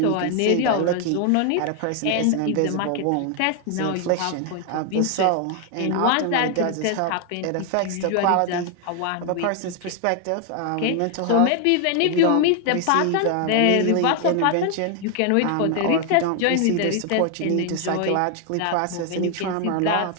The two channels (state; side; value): different; both; correlation 0.00